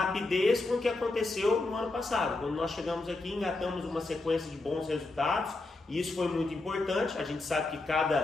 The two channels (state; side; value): quieter; right; 3.2 dB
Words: com o que aconteceu no ano passado. Quando nós chegamos aqui, engatamos uma sequência de bons resultados, e isso foi muito importante. A gente sabe que